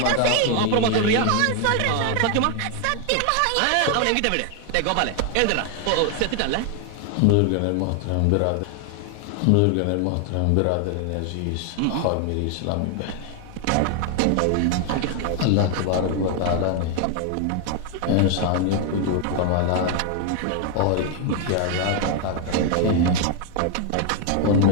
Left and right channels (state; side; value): different; both; correlation 0.00